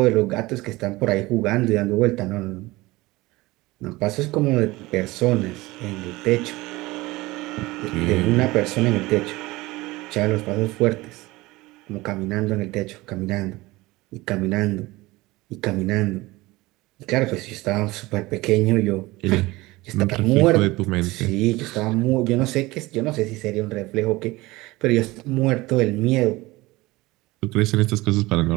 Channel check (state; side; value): quieter; left; 20.5 dB